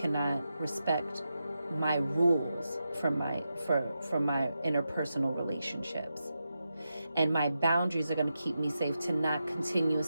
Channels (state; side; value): inverted; both; correlation -0.88